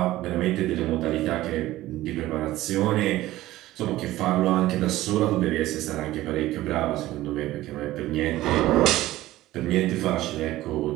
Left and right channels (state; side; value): quieter; left; 16.1 dB